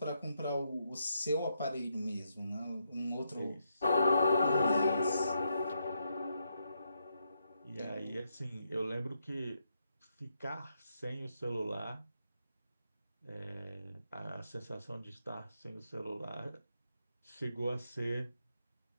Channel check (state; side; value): inverted; both; correlation -0.80